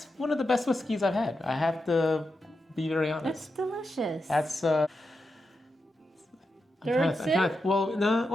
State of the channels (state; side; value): normal; both; correlation 0.88